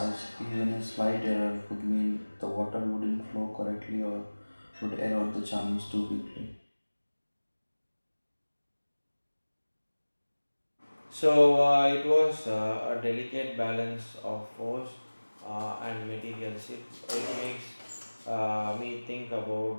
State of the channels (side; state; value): both; inverted; correlation -1.00